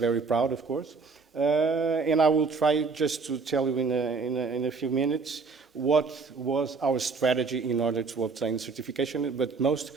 proud, of course. And I will try just to tell you in a few minutes what was our strategy in order to obtain certification, but most,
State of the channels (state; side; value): quieter; left; 4.5 dB